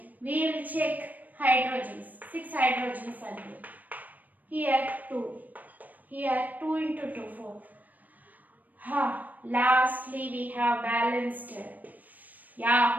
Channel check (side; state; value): left; late; 0.082 ms